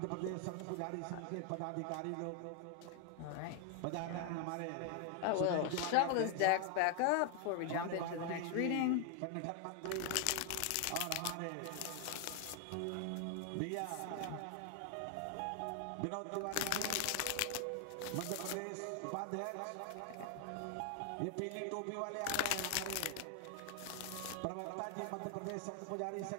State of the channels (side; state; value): both; different; correlation 0.00